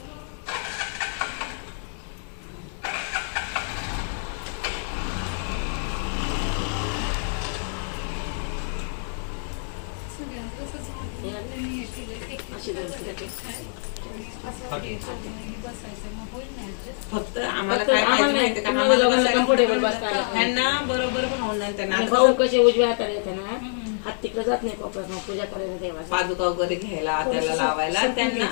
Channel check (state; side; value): silent; right; digital silence